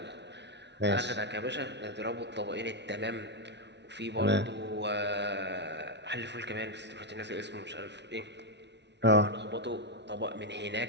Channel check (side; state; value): left; late; 0.50 ms